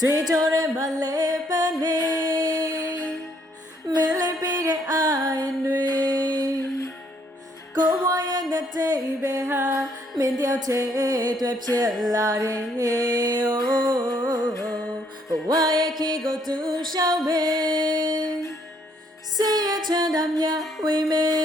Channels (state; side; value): normal; both; correlation 0.68